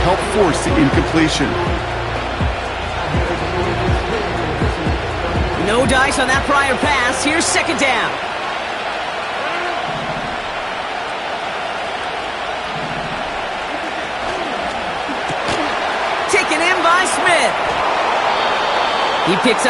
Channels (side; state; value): both; identical; correlation 1.00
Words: force the incompletion. No dice on that prior pass. Here's second down. Taken in by Smith. He picks